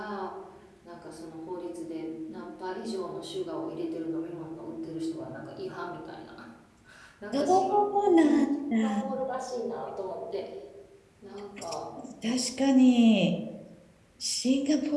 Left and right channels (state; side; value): identical; both; correlation 1.00